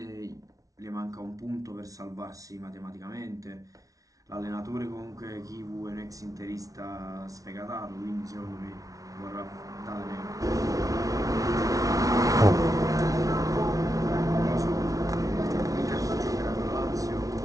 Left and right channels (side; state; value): left; late; 0.17 ms